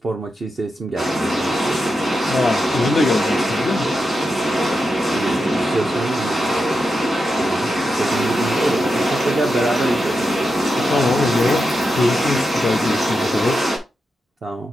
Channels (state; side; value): normal; both; correlation 0.88